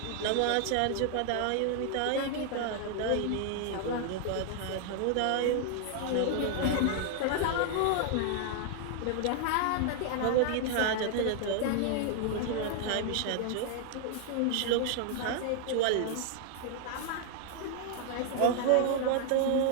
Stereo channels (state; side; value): different; both; correlation 0.00